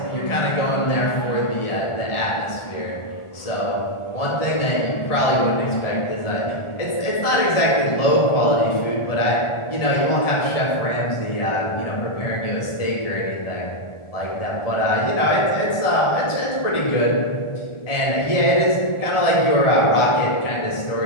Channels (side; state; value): right; late; 1.4 ms